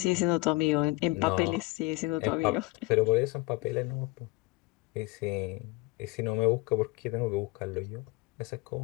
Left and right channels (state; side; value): quieter; right; 22.8 dB